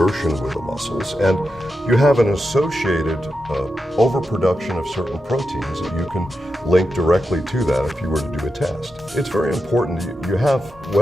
with the muscles, and you have an associated overproduction of certain proteins that you can link directly to that if you were to do a test. It's very important.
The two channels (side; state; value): both; normal; correlation 0.88